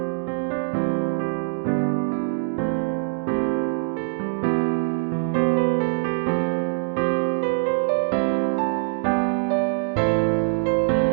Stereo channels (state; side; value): silent; left; digital silence